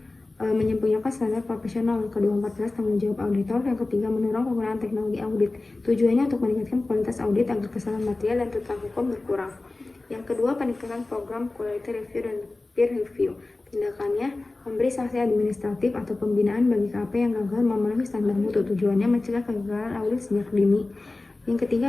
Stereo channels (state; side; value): quieter; right; 3.2 dB